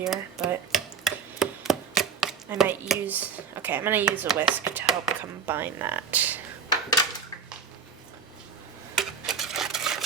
but I might use, okay, I'm going to use a whisk to help combine that.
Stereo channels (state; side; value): quieter; left; 6.2 dB